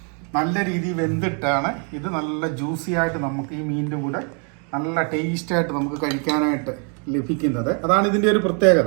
നല്ല രീതിയിൽ വെന്തിട്ടാണ് ഇത് നല്ല ജ്യൂസി ആയിട്ട് നമുക്ക് ഈ മീനിൻ്റെ കൂടെ നല്ല ടേസ്റ്റായിട്ട് നമുക്ക് കഴിക്കാനായിട്ട് ലഭിക്കുന്നത്. അതാണ് ഇതിൻ്റെ ഒരു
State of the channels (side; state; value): left; quieter; 39.1 dB